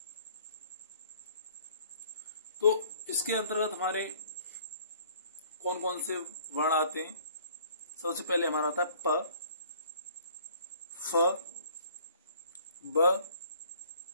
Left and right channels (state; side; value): inverted; both; correlation -0.56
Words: तो इसके अंतर्गत हमारे कौन कौन से वर्ण आते हैं। सबसे पहले हमारा आता है प, फ, ब,